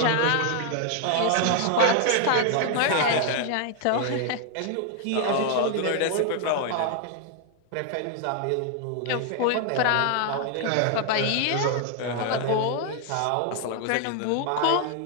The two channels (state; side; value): different; both; correlation 0.00